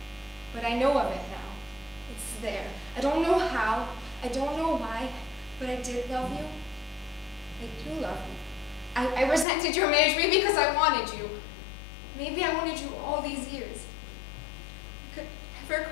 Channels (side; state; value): right; drops out; at 9.5 s